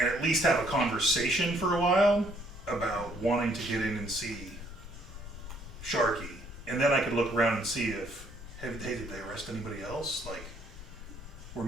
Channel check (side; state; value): right; noise; rumble, 28 dB below the sound